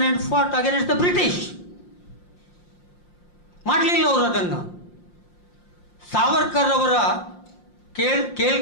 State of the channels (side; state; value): right; late; 5.7 ms